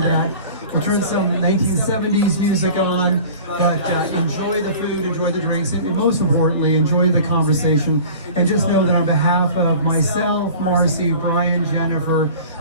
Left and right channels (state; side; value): inverted; both; correlation -0.42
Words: We'll turn some 1970s music on, but enjoy the food, enjoy the drinks, and most importantly, enjoy the conversation. And just know that on behalf of myself, Marcy, Brian, Jennifer,